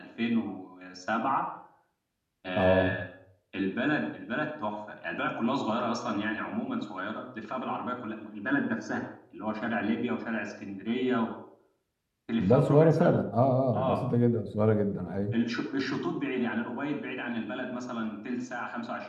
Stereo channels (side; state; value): both; identical; correlation 1.00